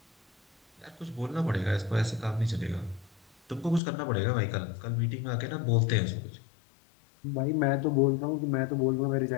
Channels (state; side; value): drops out; right; at 3.8 s